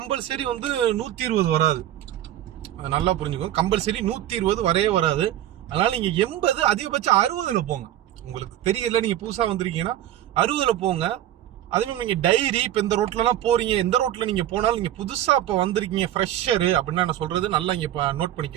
வந்து 120 வராது. அது நல்லா புரிஞ்சுக்கோங்க. கம்பல்சரி 120 வரவே வராது. அதனால நீங்க 80, அதிகபட்சம் 60ல போங்க. உங்களுக்கு தெரியல, நீங்க புதுசா வந்திருக்கீங்கன்னா 60ல போங்க. அதுவும் நீங்க டைரி இப்ப இந்த ரோட்ல எல்லாம் போறீங்க, எந்த ரோட்ல நீங்க போனாலும், நீங்க புதுசா இப்ப வந்திருக்கீங்க ஃப்ரெஷர் அப்படின்னா நான் சொல்றது நல்லா இங்க நோட்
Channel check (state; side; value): quieter; left; 12.4 dB